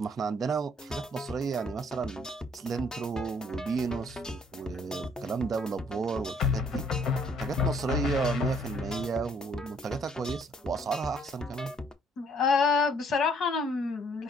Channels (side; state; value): both; normal; correlation 0.63